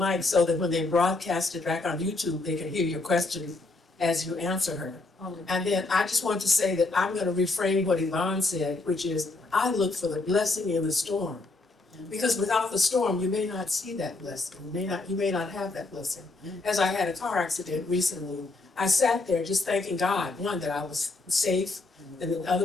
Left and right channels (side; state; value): right; quieter; 3.4 dB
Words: so that when they broadcast it back on YouTube, they can hear your question as you answer her. And then I just want to say that I'm going to reframe what Yvonne said, which is I look for the blessing in the storm. Because without the storm, you may not see that blessing. You may not have that blessing. As I had a car accident recently, I sat there just thanking God, one, that I was safe, and the